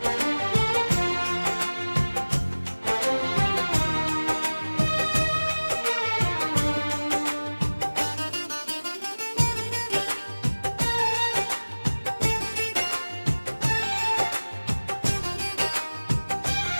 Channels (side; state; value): both; inverted; correlation -1.00